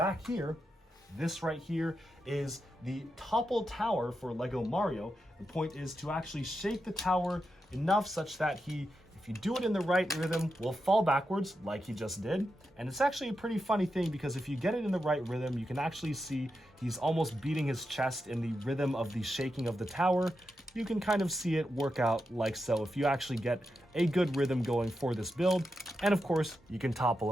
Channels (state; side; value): normal; both; correlation 0.87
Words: here. This right here is the topple tower for LEGO Mario. The point is to actually shake the tower enough such that he, if you do it in the right rhythm, will fall backwards like he just did. And it's actually a pretty funny thing because if you get it in the right rhythm, you can actually see he's almost beating his chest in the rhythm of the shaking of the tower. You can kind of see it work out like so if you actually get a good rhythm going for this build. And of course, you can topple